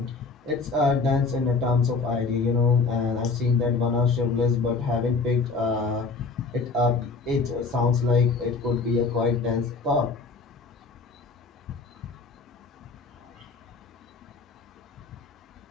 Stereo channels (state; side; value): quieter; right; 4.2 dB